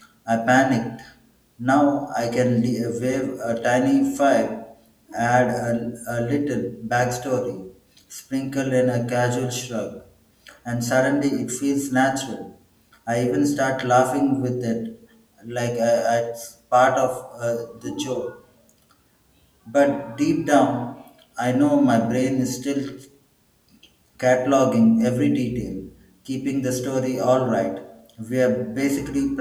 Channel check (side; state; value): both; identical; correlation 1.00